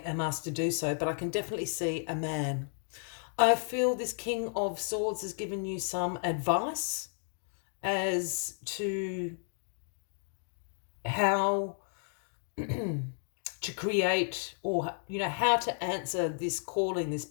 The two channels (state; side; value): silent; right; digital silence